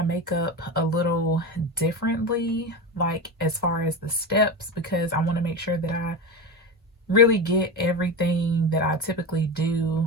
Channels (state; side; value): normal; both; correlation 0.21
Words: makeup a little differently, like as far as the steps, because I want to make sure that I really get everything that I typically